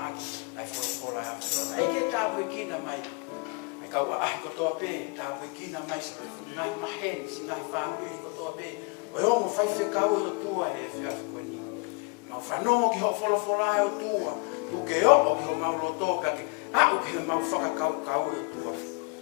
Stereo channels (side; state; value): right; quieter; 31.8 dB